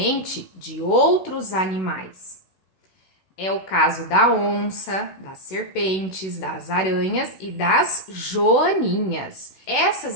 de outros animais. É o caso da onça, das serpentes, das aranhas e das joaninhas. Essas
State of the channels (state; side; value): late; right; 16 ms